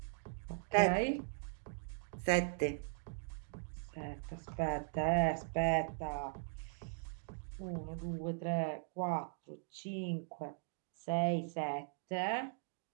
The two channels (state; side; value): silent; left; digital silence